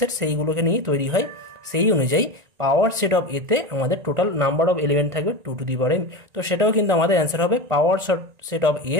সেইগুলোকে নিয়েই তৈরি হয়। সেই অনুযায়ী পাওয়ার সেট অফ এতে আমাদের টোটাল নাম্বার অফ এলিমেন্ট থাকবে 2 টু দি পাওয়ার এম। তো সেটাও কিন্তু আমাদের অ্যান্সার হবে, পাওয়ার সেট অফ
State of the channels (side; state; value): left; late; 1.9 ms